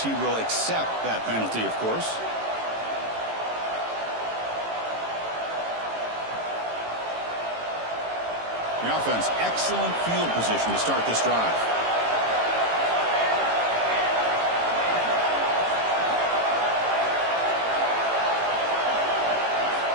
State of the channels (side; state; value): left; late; 18 ms